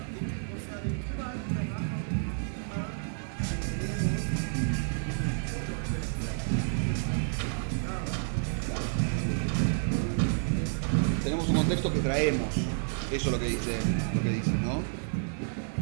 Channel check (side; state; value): left; silent; digital silence